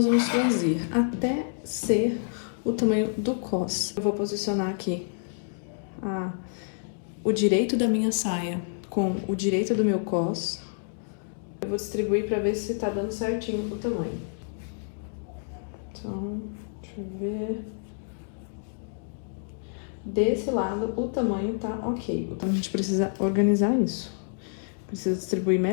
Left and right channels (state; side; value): silent; right; digital silence